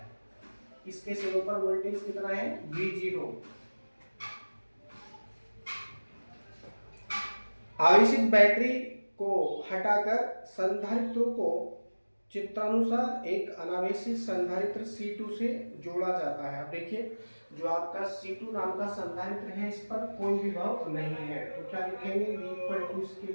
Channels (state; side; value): inverted; both; correlation -1.00